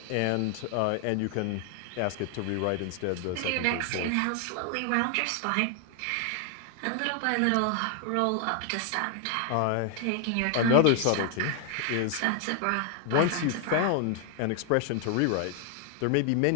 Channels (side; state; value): both; different; correlation 0.00